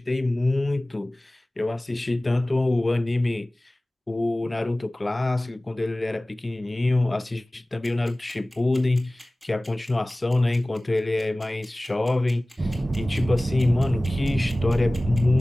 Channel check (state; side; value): normal; both; correlation 0.98